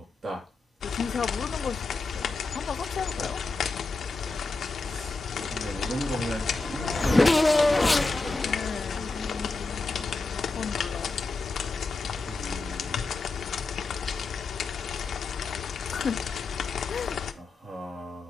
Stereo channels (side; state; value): right; quieter; 3.7 dB